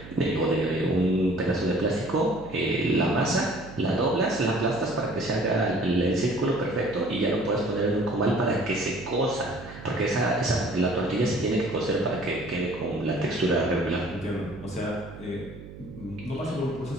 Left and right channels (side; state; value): right; noise; hum, 15 dB below the sound